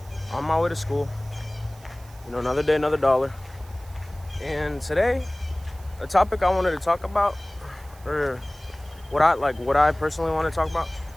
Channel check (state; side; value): noise; right; hiss, 25 dB below the sound